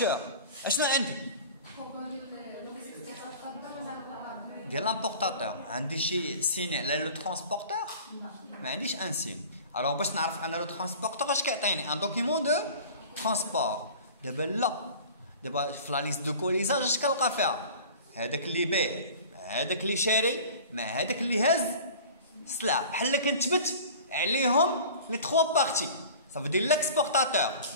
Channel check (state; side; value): inverted; both; correlation -0.41